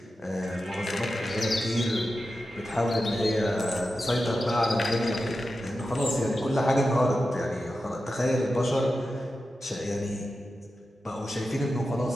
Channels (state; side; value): normal; both; correlation 0.91